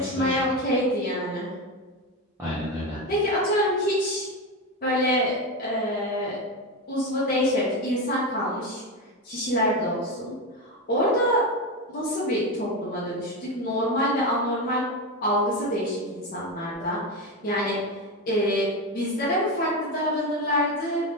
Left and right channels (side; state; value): both; normal; correlation 0.16